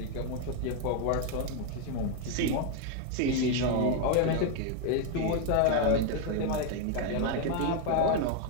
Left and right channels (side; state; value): both; different; correlation 0.00